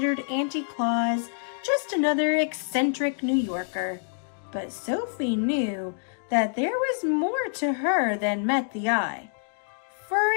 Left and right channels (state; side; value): silent; right; digital silence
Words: Auntie Claus just another eccentric New Yorker, but Sophie knew that there was more to her than met the eye. For